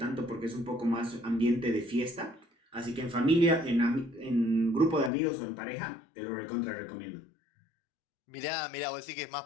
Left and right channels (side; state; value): right; drops out; at 5.1 s